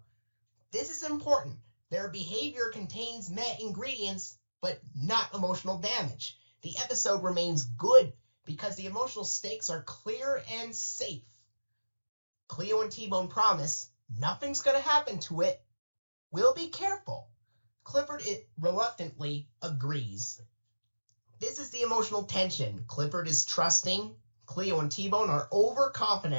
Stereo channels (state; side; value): inverted; both; correlation -1.00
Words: This is important. Their behavior contains met ingredients, but not emotional damage. The episode remains good because the emotional stakes are clear and safe. Cleo and T-Bone promise nothing's going to happen to it. We'll be careful. Clifford reluctantly agrees. This is the emotional tension. Clifford is trusting. Cleo and T-Bone are